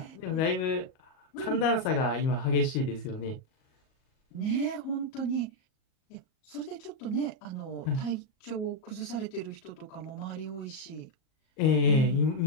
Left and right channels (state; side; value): late; right; 38 ms